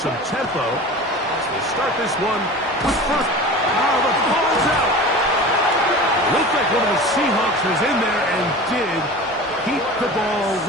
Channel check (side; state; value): both; normal; correlation 0.35